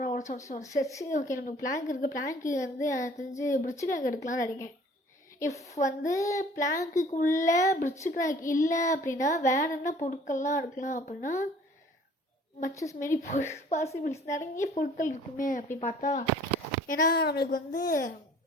சரி. ஓகே, நமக்கு பிளாங்க் இருக்குது. பிளாங்க்கு வந்து தெரிஞ்சு பிரிட்ஜு கிராக் எடுக்கலாம்னு நினைக்கிறேன். இஃப் வந்து பிளாங்க்குள்ளே பிரிட்ஜு கிராக் இல்லை அப்படின்னா வேறு என்ன பொருட்கள்லாம் எடுக்கலாம் அப்படின்னா மச்சஸ் மாரி பாசிபிள்ஸ் நிறைய பொருட்கள் இருக்குமே அப்படி பார்த்தா. ஏன்னா நம்மளுக்கு வந்து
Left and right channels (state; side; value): normal; both; correlation 0.52